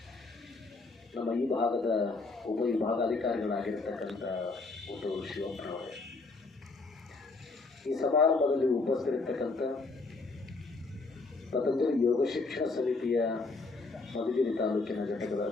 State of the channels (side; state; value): right; quieter; 3.7 dB